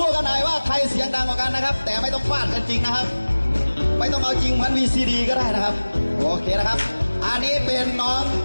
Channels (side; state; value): both; inverted; correlation -1.00